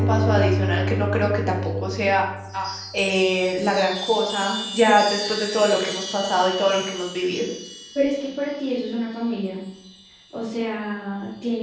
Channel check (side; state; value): both; identical; correlation 1.00